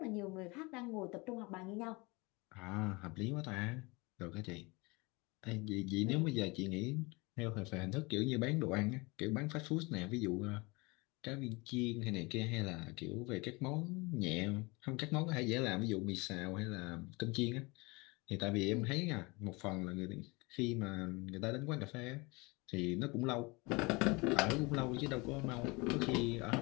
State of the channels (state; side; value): quieter; right; 25.9 dB